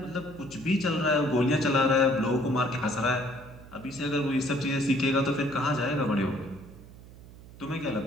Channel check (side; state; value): right; noise; hum, 19 dB below the sound